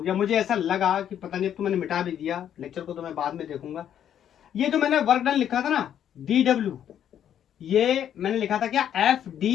गया, मुझे ऐसा लगा कि पता नहीं, तो मैंने मिटा भी दिया, लेक्चर को तो मैं बाद में देखूंगा। ये जो मैंने वर्क डन लिखा था ना dw, ये मैंने लिखा था क्या,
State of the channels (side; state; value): right; quieter; 9.8 dB